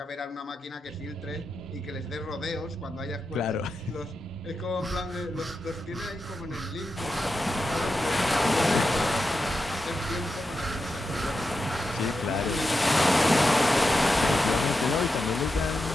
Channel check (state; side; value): normal; both; correlation 0.89